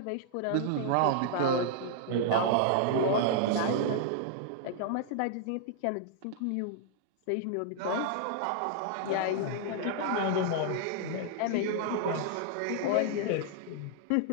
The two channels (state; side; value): different; both; correlation -0.01